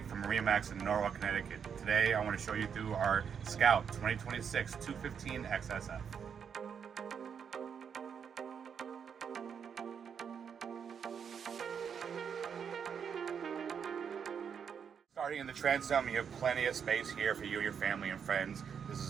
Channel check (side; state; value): left; quieter; 7.2 dB